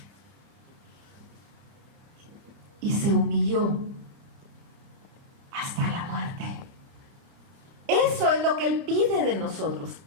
Y se humilló hasta la muerte. Eso es lo que Él pide de nosotros.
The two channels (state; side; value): late; left; 30 ms